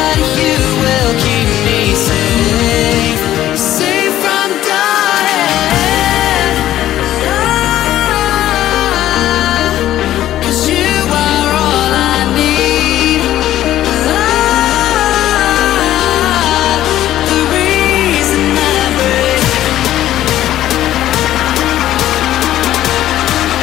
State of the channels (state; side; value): quieter; right; 13.1 dB